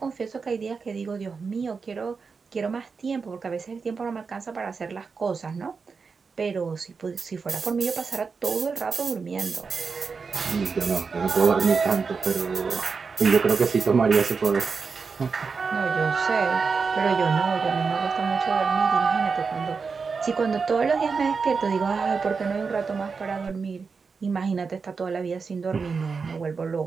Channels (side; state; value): left; quieter; 5.1 dB